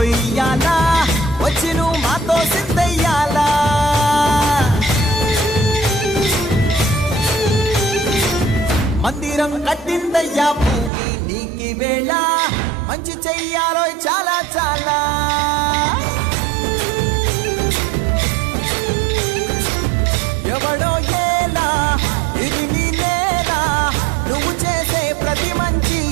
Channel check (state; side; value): drops out; left; at 10.9 s